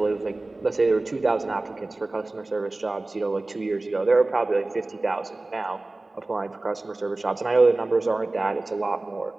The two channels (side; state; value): left; quieter; 3.0 dB